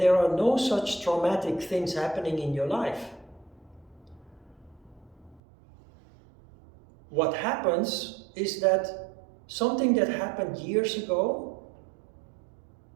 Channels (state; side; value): drops out; left; at 5.4 s